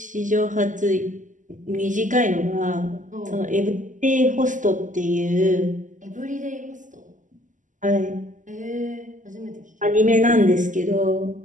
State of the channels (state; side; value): late; left; 0.37 ms